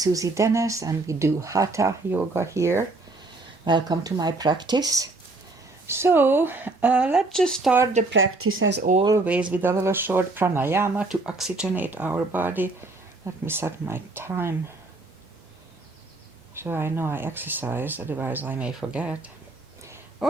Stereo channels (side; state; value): left; quieter; 3.2 dB